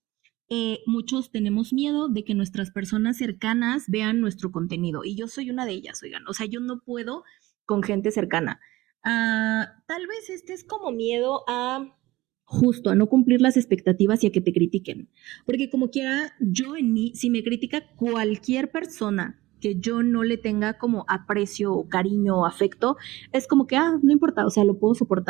muchos tenemos miedo de que nuestras personas cercanas vean nuestro contenido. Y yo soy una de ellas, oigan. O sea, yo no puedo con gente cercana. Tal vez este es como miedo a justo a no cumplir las expectativas y a que te critiquen. Porque como quiera, yo en mí, si me critica cualquier persona que yo no le tenga como aprecio o cariño o afecto, es como que, no importa, o sea, lo puedo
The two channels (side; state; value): left; quieter; 18.7 dB